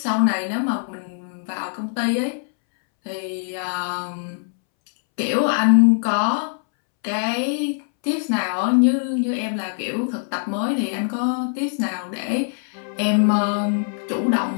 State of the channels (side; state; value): right; silent; 64 dB below the other